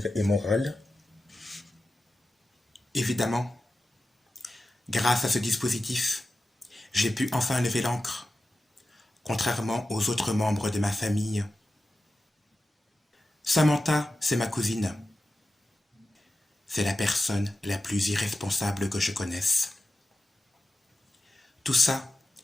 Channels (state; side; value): normal; both; correlation 0.93